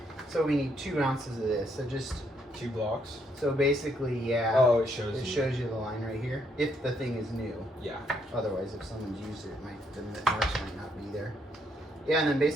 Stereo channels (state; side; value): normal; both; correlation 0.72